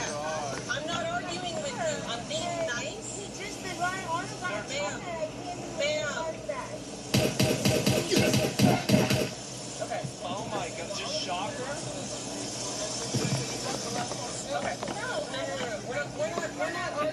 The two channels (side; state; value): both; identical; correlation 1.00